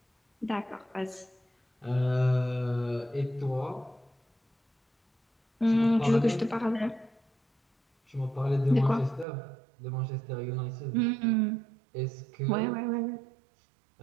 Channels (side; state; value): left; drops out; at 9.2 s